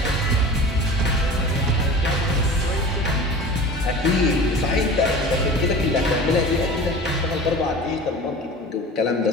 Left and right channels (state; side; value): normal; both; correlation 0.37